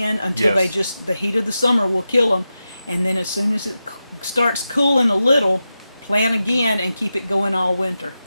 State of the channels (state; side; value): inverted; both; correlation -0.91